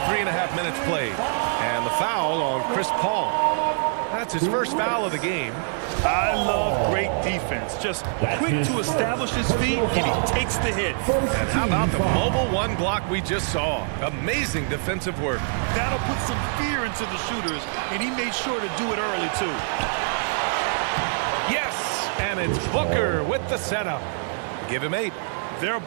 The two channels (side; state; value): left; silent; digital silence